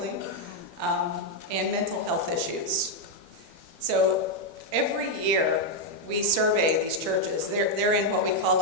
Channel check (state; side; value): late; left; 12 ms